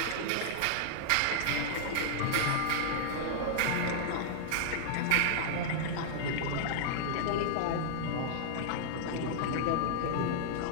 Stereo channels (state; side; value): different; both; correlation -0.01